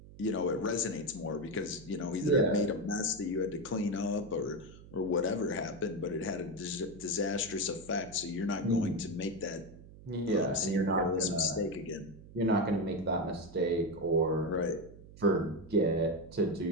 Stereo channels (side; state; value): right; noise; hum, 18 dB below the sound